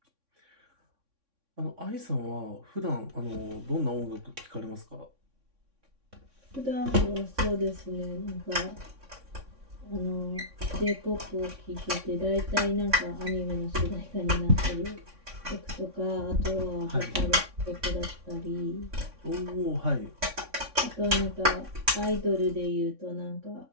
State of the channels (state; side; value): late; left; 3.6 ms